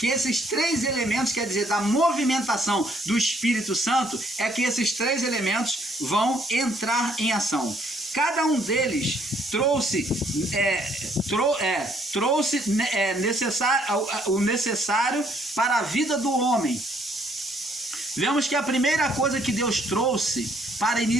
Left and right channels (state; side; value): normal; both; correlation 0.66